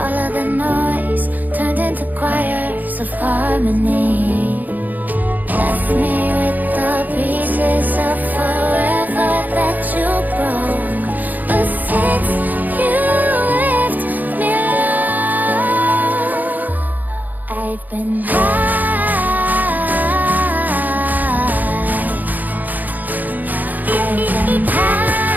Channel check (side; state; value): left; late; 0.083 ms